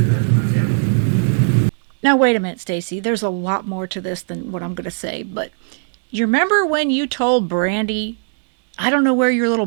that to my family. Now, wait a minute, Stacey. There's a lot more to this than what I'm going to say, but you remember when you told Brandy, I don't know where your little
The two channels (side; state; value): left; silent; digital silence